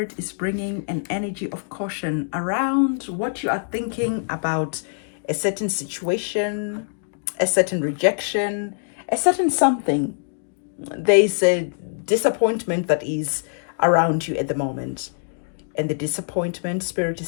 is bringing an energy of caution around what you are thinking about a certain situation, a certain rejection, a certain something. There's a disappointment that is around you at the moment. And the disappointment, Spirit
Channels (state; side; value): silent; right; digital silence